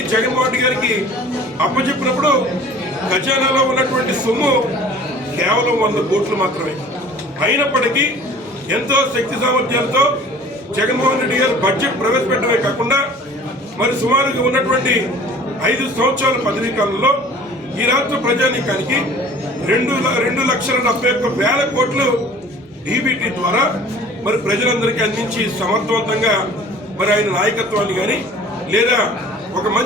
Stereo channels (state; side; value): normal; both; correlation 0.47